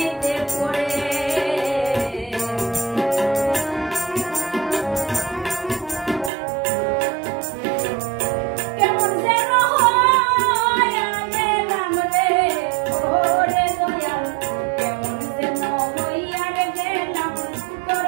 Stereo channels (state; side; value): drops out; left; at 6.3 s